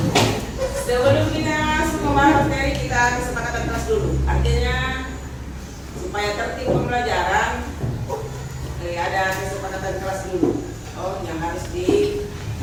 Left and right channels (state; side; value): identical; both; correlation 1.00